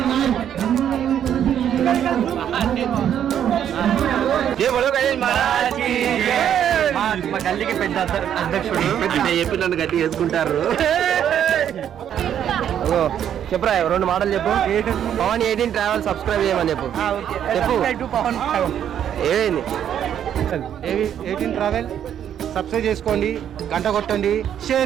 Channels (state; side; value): quieter; left; 9.6 dB